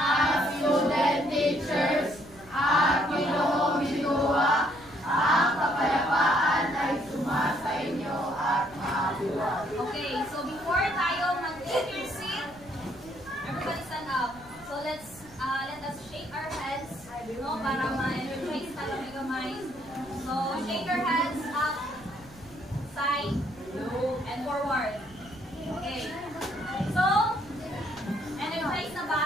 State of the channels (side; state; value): right; noise; rumble, 22 dB below the sound